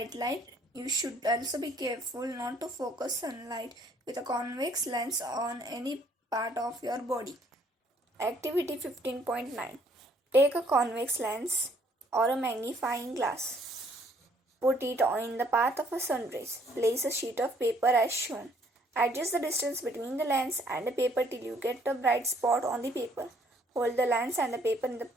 light. You should also be careful not to focus sunlight with a convex lens on any part of your body. Activity 15.9. Take a convex lens or a magnifying glass. Put it in the path of a sun rays. Place a sheet of paper as shown. Adjust the distance between the lens and the paper till you get a bright spot on the paper. Hold the lens and the paper in the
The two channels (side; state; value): both; normal; correlation 0.64